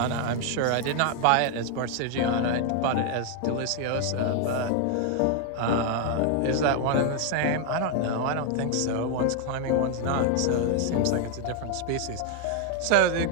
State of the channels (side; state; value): both; different; correlation 0.00